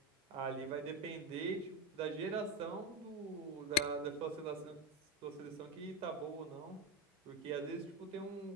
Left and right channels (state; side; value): normal; both; correlation 0.13